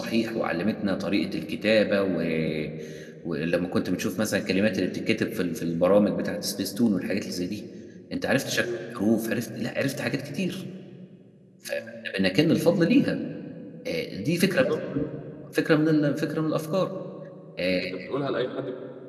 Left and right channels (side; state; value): both; identical; correlation 1.00